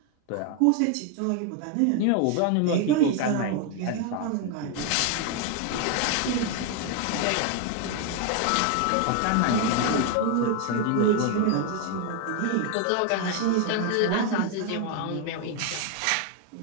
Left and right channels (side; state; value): both; different; correlation 0.01